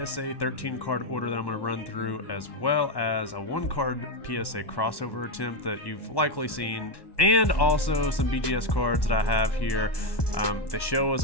13 card order that I'm going to run through, as well as a 1 card PSA crossover attempt that you've likely seen, and also some BGS cards that I have here. The show was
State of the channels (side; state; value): right; late; 1.1 ms